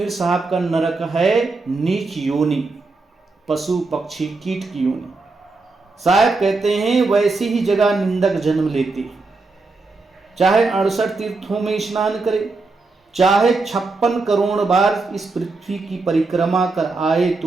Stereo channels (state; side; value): quieter; left; 3.7 dB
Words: साहब का नरक है नीच योनि, पशु पक्षी कीट की योनि। साहब कहते हैं वैसी ही जगह निंदक जन्म लेते हैं, चाहे 68 तीर्थों में स्नान करे, चाहे 56 करोड़ बार इस पृथ्वी की परिक्रमा कर आए